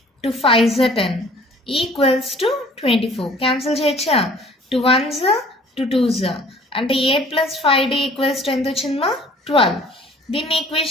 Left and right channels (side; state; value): both; normal; correlation 0.52